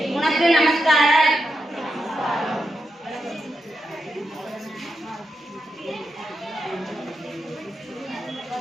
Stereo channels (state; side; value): normal; both; correlation 0.86